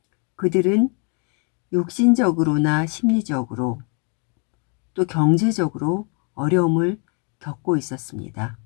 그들은 육신적으로나 심리적으로 또 경제적으로 어려움을 겪고 있었습니다.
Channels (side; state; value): right; quieter; 38.2 dB